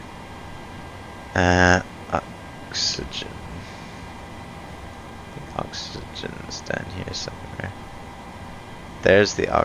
Oxygen. Oxygen's down here somewhere. There's the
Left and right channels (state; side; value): identical; both; correlation 1.00